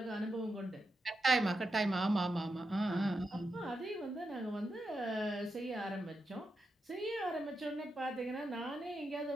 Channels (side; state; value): both; normal; correlation 0.86